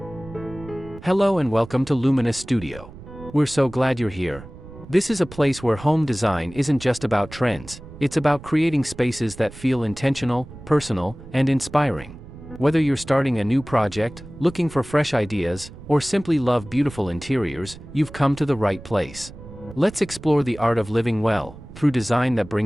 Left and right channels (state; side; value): noise; right; rumble, 16 dB below the sound